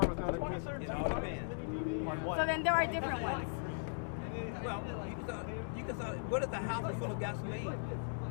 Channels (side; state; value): right; silent; digital silence